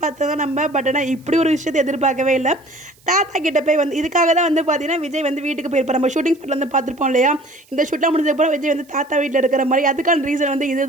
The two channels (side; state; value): right; noise; hiss, 30 dB below the sound